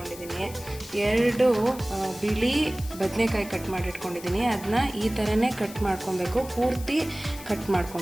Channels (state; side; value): noise; left; hiss, 16 dB below the sound